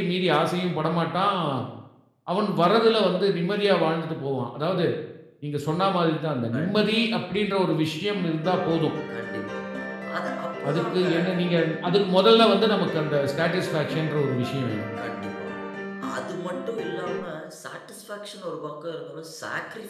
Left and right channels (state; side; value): identical; both; correlation 1.00